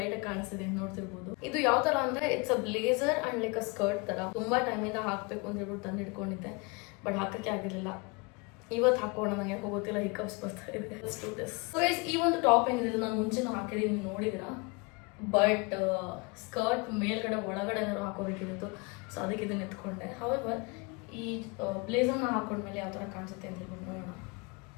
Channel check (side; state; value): right; quieter; 29.2 dB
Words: ಆಗಿ ಕಾಣಿಸ್ತಿದೆ ನೋಡ್ತಿರ್ಬೋದು. ಇದು ಯಾವ ತರ ಅಂದ್ರೆ it's a blazer and like a skirt ತರ. ತುಂಬಾ ಟೈಮ್ ಇಂದ ಹಾಕ್ಬೇಕು ಅಂತ ಹೇಳ್ಬಿಟ್ಟು ತಂದು ಇಟ್ಕೊಂಡಿದ್ದೆ, ಬಟ್ ಹಾಕಕ್ಕೆ ಆಗಿರ್ಲಿಲ್ಲ. ಇವತ್ತು ಹಾಕೋಣ, ನನಗೆ ಹೋಗೋತಿಲ್ಲ, ಹಿಕಪ್ಸ್ ಬರ್ತಾ ಇದೆ. ಈ ಒಂದು ಟಾಪ್ ಏನಿದೆ ನಾನು ಮುಂಚೆನೂ ಹಾಕಿದೀನಿ, ನೀವು ನೋಡಿದಿರಾ. ಬಟ್ ಸ್ಕರ್ಟ್ ಮೇಲ್ಗಡೆ ಒಳಗಡೆ ಏನಾದ್ರು ಹಾಕೋಬೇಕಿತ್ತು, ಸೊ ಅದಕ್ಕೆ ಇದನ್ನ ಎತ್ಕೊಂಡೆ. ಹವೆವರ್ ಈ ಬ್ಲೇಸರ್ನ ಹಾಕೊಂಡ್ಮೇಲೆ ಯಾವ ತರ ಕಾಣಿಸುತ್ತೆ ಅಂತ ಹೇಳ್ಬಿಟ್ಟು ನೋಡೋಣ.